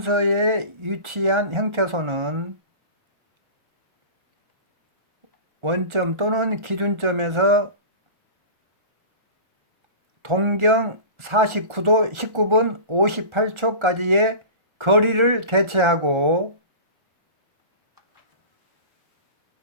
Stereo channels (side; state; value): left; late; 1.4 ms